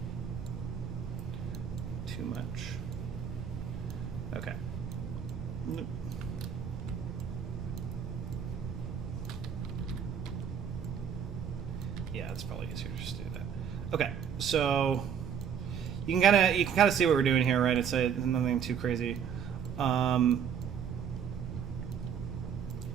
Too much. Okay. Nope. Yeah, it's probably easier to just do that. Okay, so you can kind of see what we're doing here, right? It's nothing too crazy.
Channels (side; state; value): left; quieter; 7.9 dB